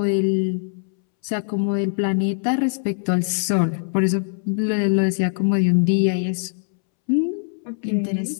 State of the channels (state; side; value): silent; right; 64 dB below the other